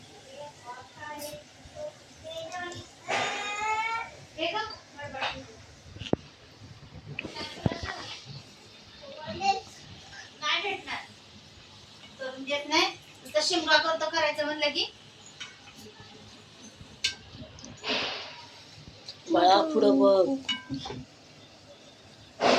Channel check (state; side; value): identical; both; correlation 1.00